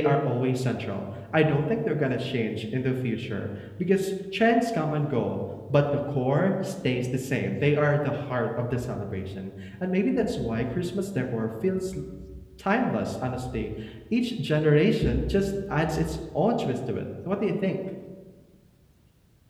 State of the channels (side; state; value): both; identical; correlation 1.00